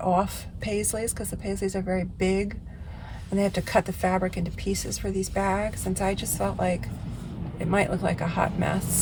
off paisleys, because the paisleys are very big, and they have to cut the fabric into pieces for these bags. And so I just felt like it might look like a hot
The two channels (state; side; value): identical; both; correlation 1.00